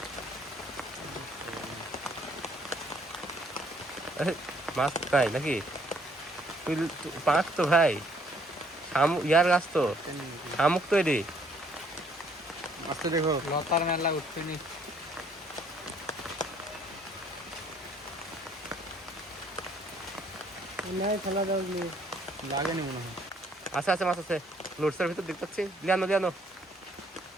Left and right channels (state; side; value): normal; both; correlation 0.64